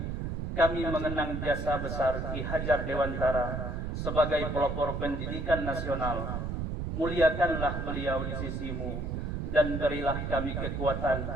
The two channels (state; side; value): noise; right; rumble, 3 dB below the sound